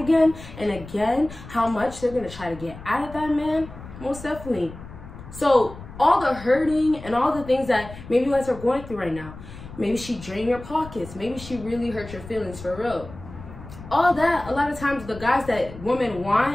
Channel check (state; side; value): noise; left; rumble, 15 dB below the sound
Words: and again, how much they're gonna try to get out of that man, most definitely. So all the hurting and all the things that maybe you guys are going through right now, maybe she drained your pockets, maybe she really hurt your feelings for real. All that, a lot of times the guys that women